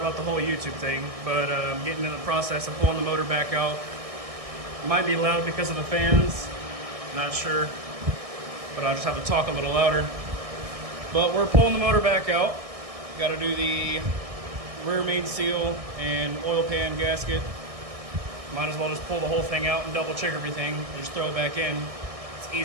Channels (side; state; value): left; late; 1.6 ms